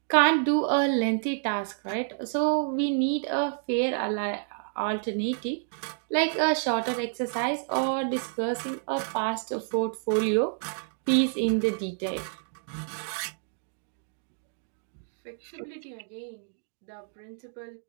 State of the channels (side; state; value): left; silent; digital silence